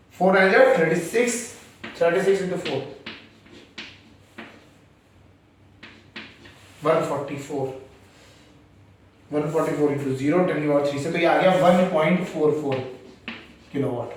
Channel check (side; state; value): both; identical; correlation 1.00